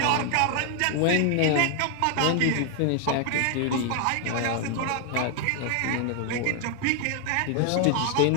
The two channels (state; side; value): different; both; correlation 0.00